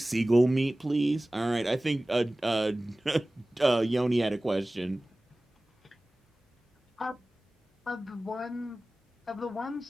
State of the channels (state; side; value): normal; both; correlation 0.98